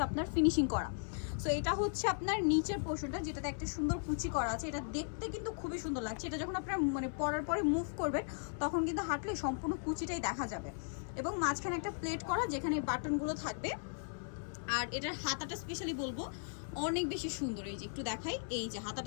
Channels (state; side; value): silent; right; 53 dB below the other